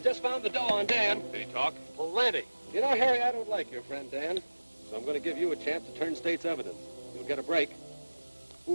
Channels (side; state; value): both; inverted; correlation -1.00